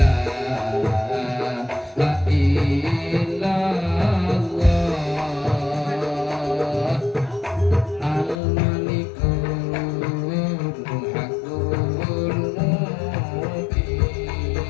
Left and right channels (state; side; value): drops out; right; at 8.3 s